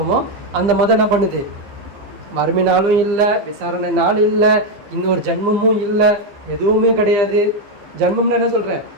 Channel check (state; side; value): late; left; 15 ms